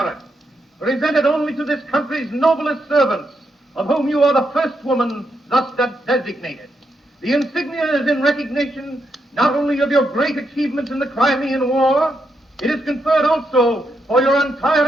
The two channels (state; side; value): normal; both; correlation 0.81